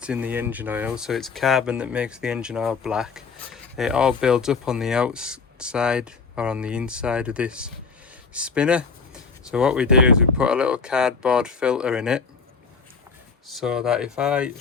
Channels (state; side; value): quieter; right; 5.0 dB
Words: in the engine oil, so it's carbon that makes the engine oil black, it all builds up on the outside or on the inside of this spinner. So what we do is we put a little cardboard filter in it, so that if I